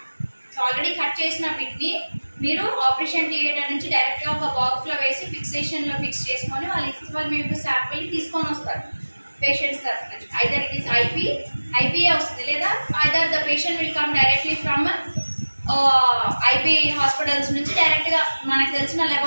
So already cut chesina bit ni మీరు operation theatre నుంచి డైరెక్ట్గా ఒక బాక్స్లో వేసి ఫిక్సేషన్లో ఫిక్స్ చేసుకొని వాళ్ళు మీకు శాంపిల్ తీసుకొని వస్తారు పేషెంట్స్ తరఫు నుంచి. ఐదర్ ఇట్ ఈస్ ఐపీఏ వస్తుంది, లేదా either the patient will come directly from IP hospitals నుంచి డైరెక్ట్గా మనకు తెలిసిన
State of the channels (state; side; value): inverted; both; correlation -1.00